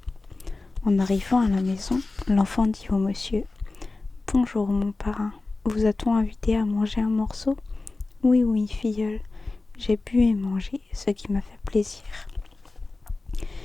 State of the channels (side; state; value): right; quieter; 3.4 dB